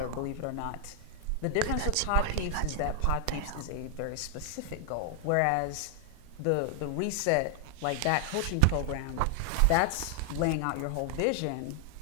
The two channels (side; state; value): both; different; correlation 0.00